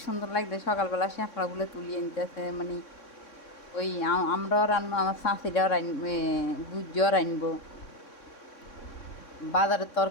সুন্দর লাগছে। সকালবেলা শ্যাপলাগুলো তুলিয়ে নিতেছে, মানে ওই আমরাও রান্না, আমার শাঁসিরাও বুঝিও রানবো। বাজারের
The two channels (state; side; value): late; right; 3.6 ms